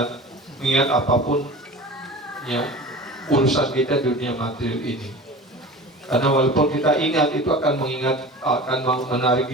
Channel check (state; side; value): normal; both; correlation 0.36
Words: apapun, ya, urusan kita dunia material ini. Karena walaupun kita ingat, itu akan menarik